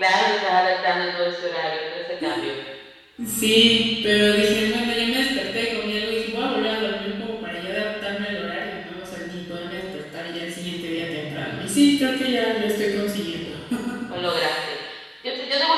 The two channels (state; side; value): identical; both; correlation 1.00